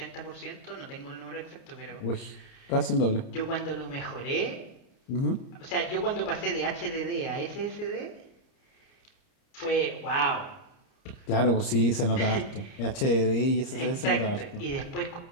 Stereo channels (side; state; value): right; late; 30 ms